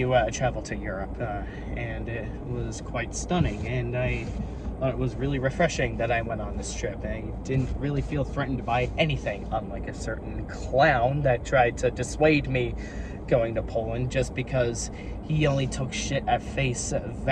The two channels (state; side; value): identical; both; correlation 1.00